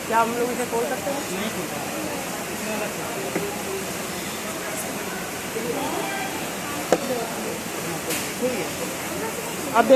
क्या हम लोग इसे खोल सकते हैं? अब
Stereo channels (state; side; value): identical; both; correlation 1.00